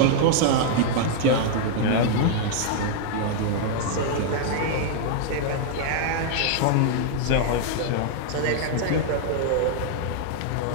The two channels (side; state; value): both; different; correlation -0.01